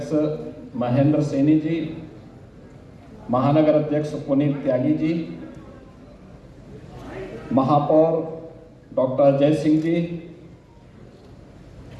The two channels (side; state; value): both; identical; correlation 1.00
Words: महेंद्र सैनी जी, महानगर अध्यक्ष पुनीत त्यागी जी, महापौर डॉक्टर अजय सिंह जी,